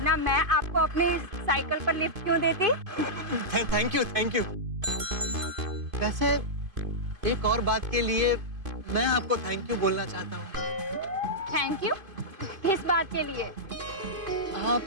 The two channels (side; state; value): left; late; 2.5 ms